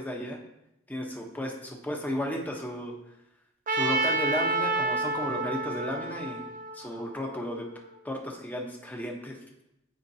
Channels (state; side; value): normal; both; correlation 0.17